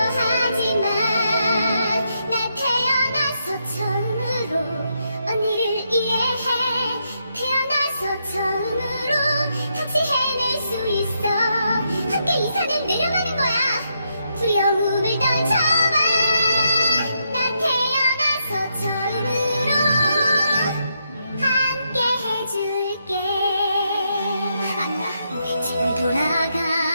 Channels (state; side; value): inverted; both; correlation -0.80